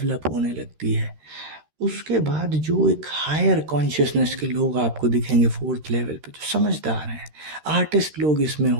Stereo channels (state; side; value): late; left; 13 ms